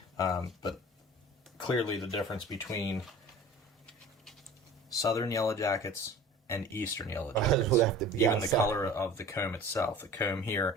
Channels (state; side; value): normal; both; correlation 0.42